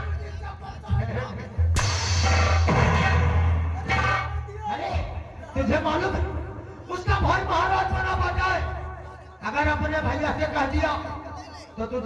अरे तुझे मालूम है उसका भाई महाराज बना बैठा है। अगर अपने भैया से कह दिया तो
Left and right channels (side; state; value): both; identical; correlation 1.00